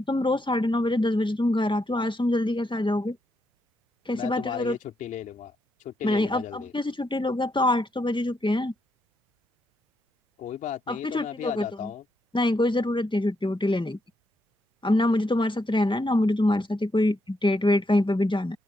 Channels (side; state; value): both; normal; correlation 0.79